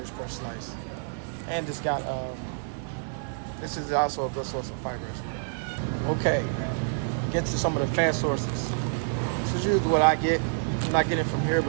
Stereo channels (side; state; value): left; silent; digital silence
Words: per slice. And this got this is also a good source of fiber as well. Okay, get to some of the fat sources. This is usually what I get. I'm not getting it from here